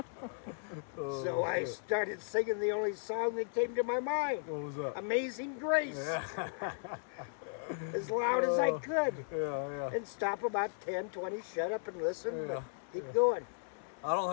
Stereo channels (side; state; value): right; silent; 54 dB below the other